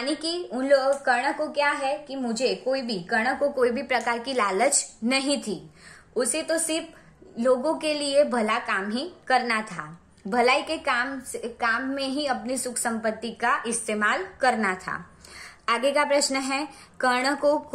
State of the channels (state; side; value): identical; both; correlation 1.00